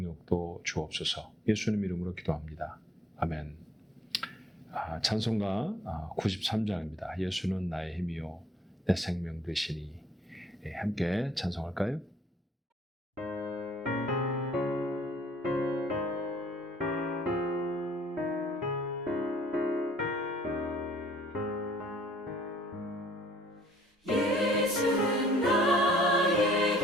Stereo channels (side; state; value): both; normal; correlation 0.59